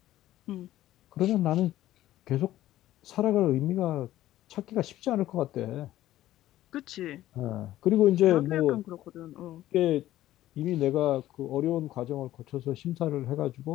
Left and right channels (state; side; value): quieter; right; 14.3 dB